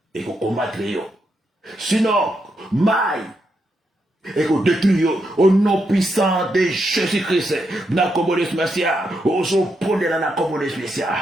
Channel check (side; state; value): both; normal; correlation 0.82